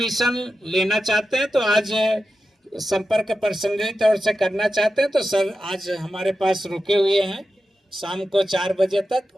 लेना चाहते हैं तो आज संपर्क पर्सनली तौर से करना चाहते हैं तो सर आज हमारे पास रुके हुए हैं, शाम को 4 बजे तक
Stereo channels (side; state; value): both; normal; correlation 0.91